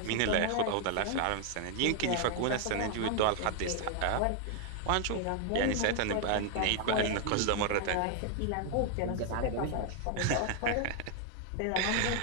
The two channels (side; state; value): both; different; correlation 0.00